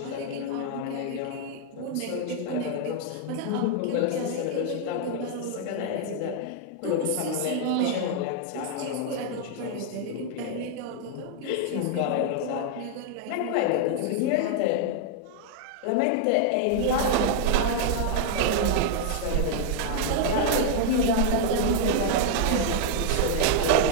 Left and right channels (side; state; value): both; different; correlation 0.00